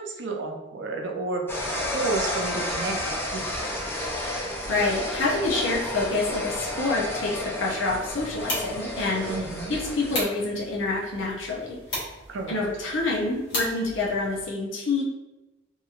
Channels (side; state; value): both; normal; correlation 0.24